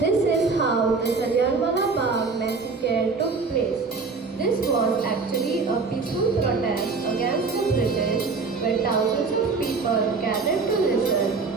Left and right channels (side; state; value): left; quieter; 4.4 dB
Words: This is how the Jallianwala Bagh massacre took place. This was actually a peaceful protest against the British, where thousands of people gathered to listen